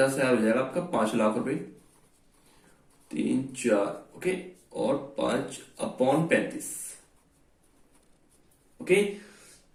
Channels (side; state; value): both; identical; correlation 1.00